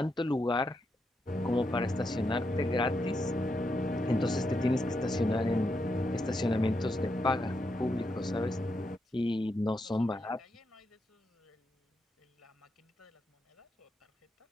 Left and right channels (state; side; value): normal; both; correlation 0.83